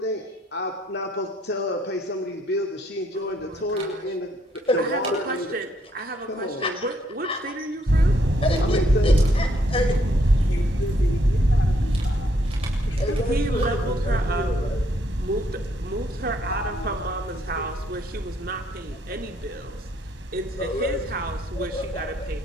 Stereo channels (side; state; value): both; normal; correlation 0.70